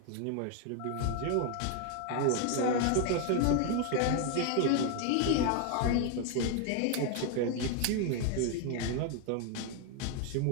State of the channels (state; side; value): different; both; correlation 0.00